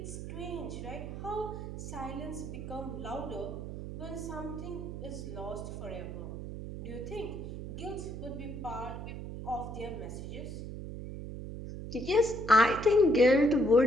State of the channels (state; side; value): noise; right; hum, 8 dB below the sound